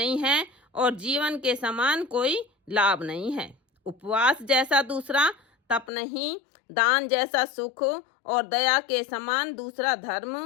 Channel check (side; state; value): right; drops out; at 5.9 s